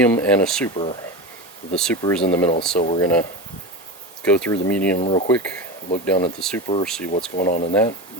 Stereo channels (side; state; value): both; normal; correlation 0.23